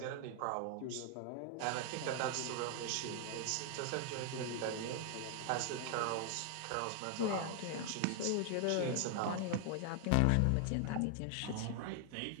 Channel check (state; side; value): different; both; correlation 0.00